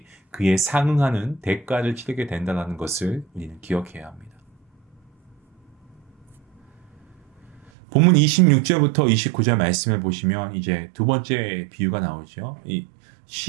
그에 상응하는 대가를 치르게 된다는 것을 우리는 기억해야 합니다. 본문 26절부터 29절 말씀을 보시면 이제 두 번째 비유가 나오죠. 이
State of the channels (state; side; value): drops out; left; at 7.7 s